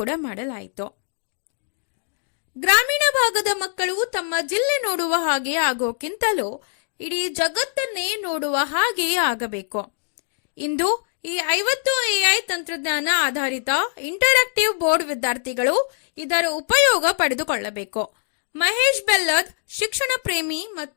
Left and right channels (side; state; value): right; silent; digital silence